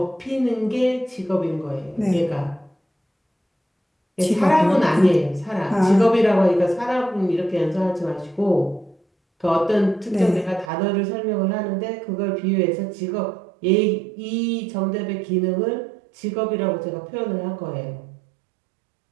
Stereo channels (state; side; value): drops out; left; at 10.7 s